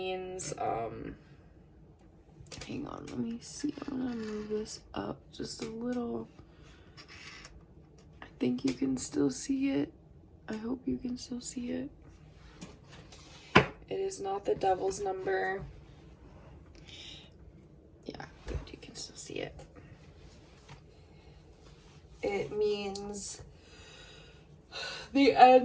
hang on, let me see. I'm gonna move this up just a little. I think you can still see it. I hope you can still see it. It is not the devil's number. Yeah, good, you can still see it. It means the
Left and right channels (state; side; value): identical; both; correlation 1.00